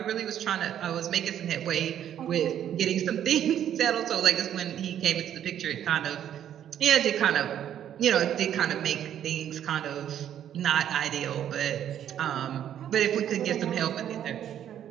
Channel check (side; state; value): left; quieter; 10.3 dB